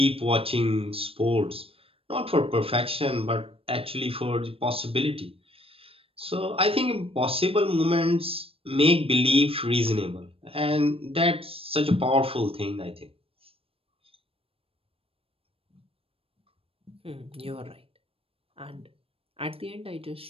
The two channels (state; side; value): late; left; 0.28 ms